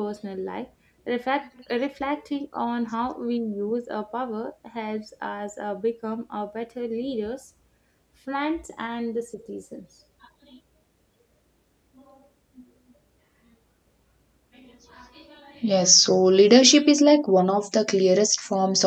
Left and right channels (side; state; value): both; identical; correlation 1.00